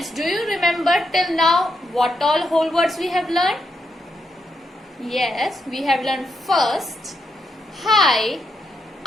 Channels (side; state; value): both; normal; correlation 0.81